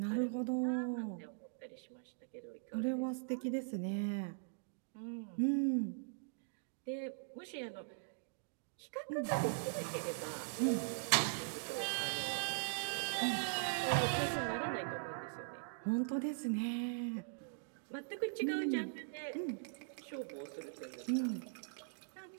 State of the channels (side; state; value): left; silent; digital silence